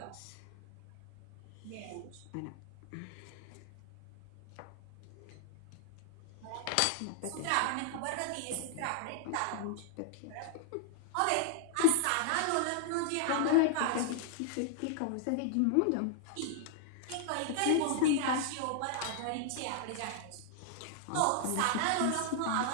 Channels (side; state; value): both; different; correlation -0.01